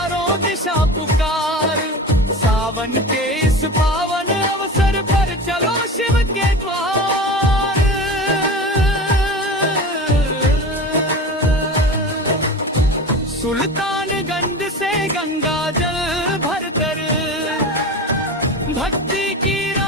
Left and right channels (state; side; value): normal; both; correlation 0.31